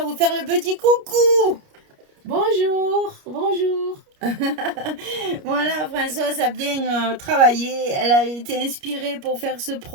vous faire le petit coucou. Bonjour, bonjour. Voilà, Françoise a bien travaillé, elle a été inspirée pour faire ce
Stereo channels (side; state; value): left; late; 29 ms